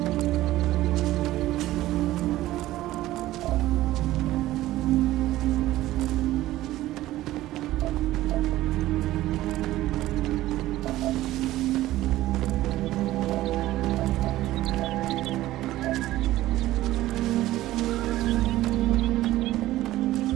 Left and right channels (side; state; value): left; quieter; 15.7 dB